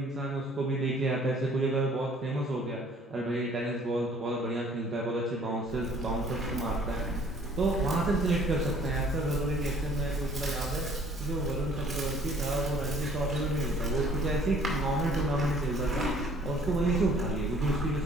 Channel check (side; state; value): both; normal; correlation 0.56